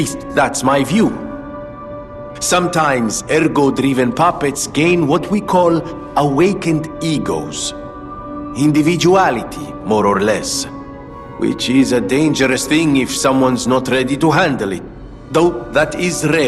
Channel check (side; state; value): both; identical; correlation 1.00